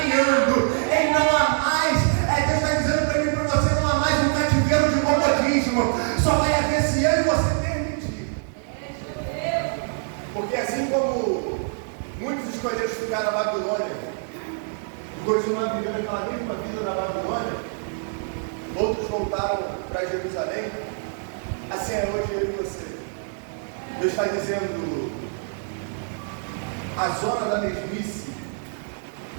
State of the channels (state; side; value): silent; left; 62 dB below the other